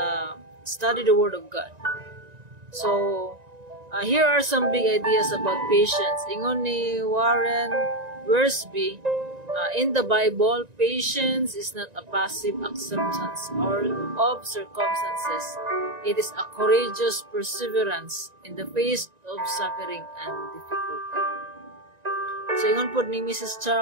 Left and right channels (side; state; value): left; late; 1.9 ms